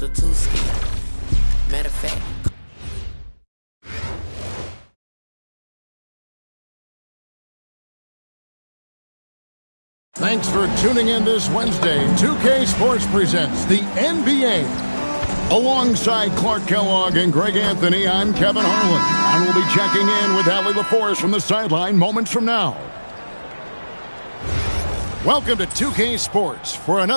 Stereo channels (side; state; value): both; inverted; correlation -1.00